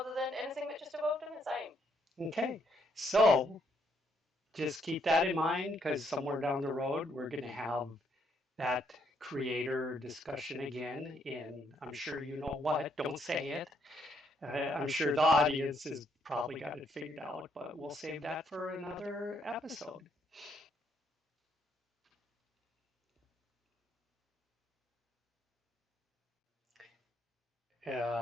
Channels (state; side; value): normal; both; correlation 0.73